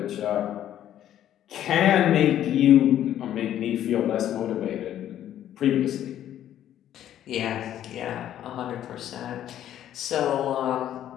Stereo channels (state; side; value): quieter; right; 11.4 dB